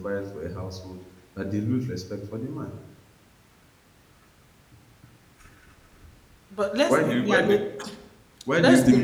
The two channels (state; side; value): identical; both; correlation 1.00